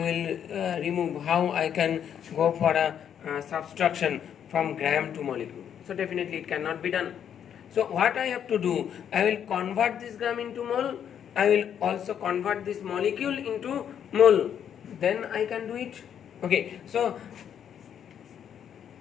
remove, how I can go for a subtraction from gram to molecule. So definitely it cannot be done. So what I have to do, I will convert this gram into mole. I will also convert this molecule into mole. Then I can do it. Okay, so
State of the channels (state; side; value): quieter; right; 8.9 dB